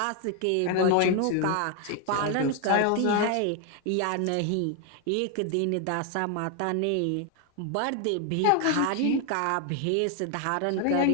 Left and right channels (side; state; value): both; different; correlation 0.01